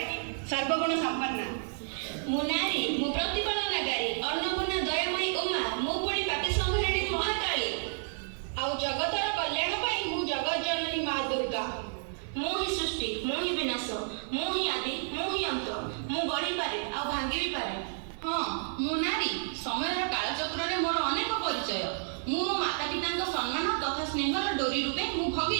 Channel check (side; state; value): left; silent; digital silence